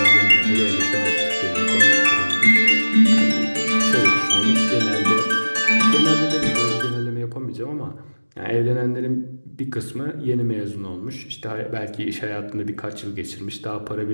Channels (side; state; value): both; inverted; correlation -1.00